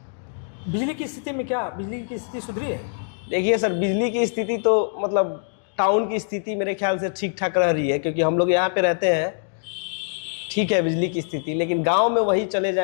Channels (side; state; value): right; silent; digital silence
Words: बिजली की स्थिति में क्या बिजली की स्थिति सुधरी है? देखिए सर, बिजली की स्थिति तो मतलब टाउन की स्थिति मेरे ख्याल से ठीक ठाक रह रही है, क्योंकि हम लोग यहाँ पे रहते हैं। ठीक है बिजली की स्थिति, लेकिन गांव में वही चले